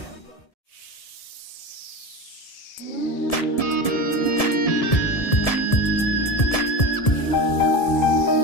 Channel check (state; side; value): late; right; 1.7 ms